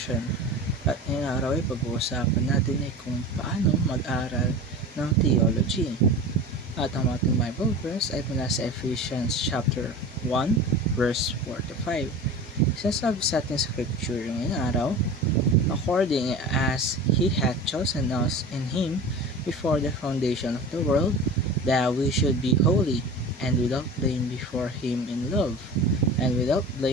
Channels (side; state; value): both; normal; correlation 0.34